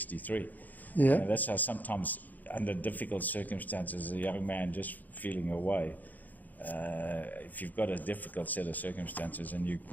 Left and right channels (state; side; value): late; right; 0.082 ms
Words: Yeah, that's how sometimes under difficult circumstances, a young man just feeling away. If you've got a difficult set of circumstances and you